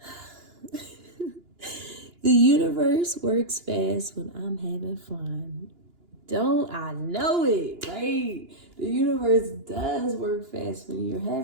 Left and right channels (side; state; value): left; late; 2.9 ms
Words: the universe works fast when I'm having fun. Don't I know it, right? The universe does work fast when you're